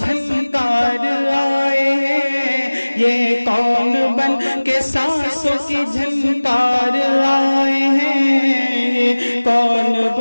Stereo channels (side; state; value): both; inverted; correlation -1.00